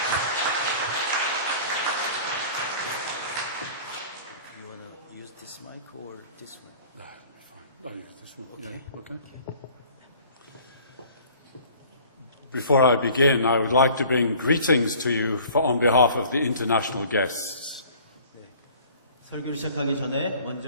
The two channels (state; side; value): inverted; both; correlation -0.49